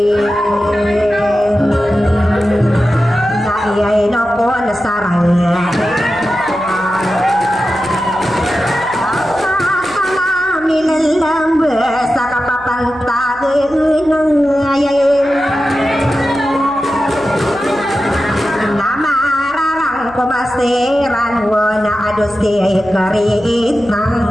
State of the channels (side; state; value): right; noise; hum, 23 dB below the sound